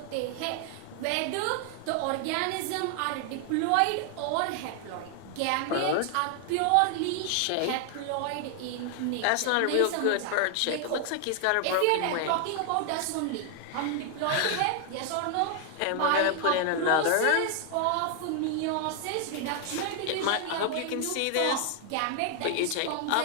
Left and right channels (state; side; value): different; both; correlation 0.00